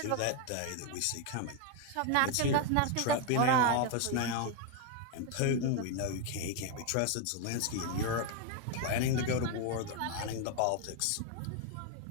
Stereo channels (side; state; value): both; different; correlation 0.01